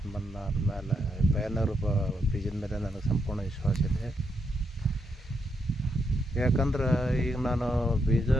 ಬಂದಾದ್ಮೇಲೆ ಪಯನೇರ್ ಬೀಜದ ಮೇಲೆ ನನಗೆ ಸಂಪೂರ್ಣ ವಿಶ್ವಾಸ ಇದೆ. ಯಾಕಂದ್ರೆ ಈಗ ನಾನು ಬೀಜ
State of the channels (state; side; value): normal; both; correlation 0.79